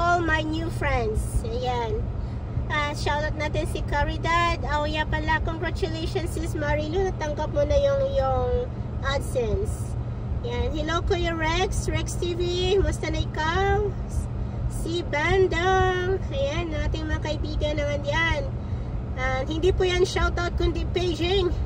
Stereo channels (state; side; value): identical; both; correlation 1.00